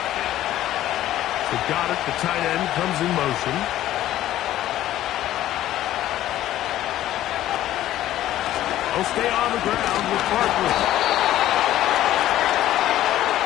So Goddard, the tight end, comes in motion. He'll stay on the ground with Barkley.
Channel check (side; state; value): right; quieter; 13.5 dB